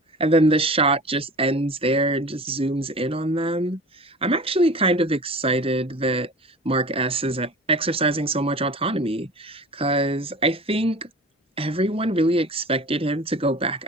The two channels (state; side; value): normal; both; correlation 0.38